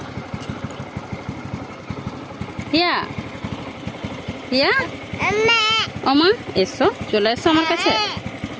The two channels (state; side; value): identical; both; correlation 1.00